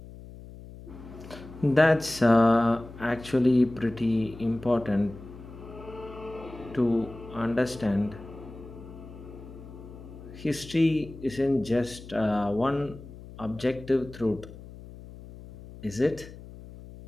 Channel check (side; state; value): left; noise; hum, 16 dB below the sound